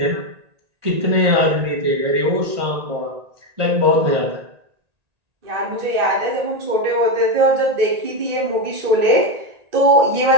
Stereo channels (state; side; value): late; left; 1.8 ms